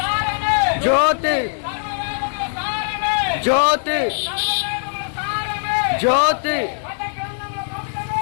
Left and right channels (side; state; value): right; silent; 60 dB below the other